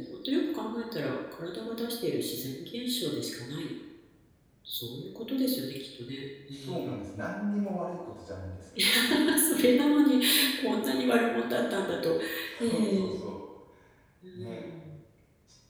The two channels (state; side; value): identical; both; correlation 1.00